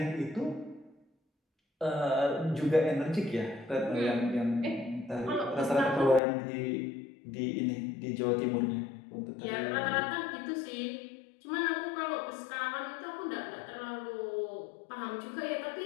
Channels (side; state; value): right; drops out; at 6.2 s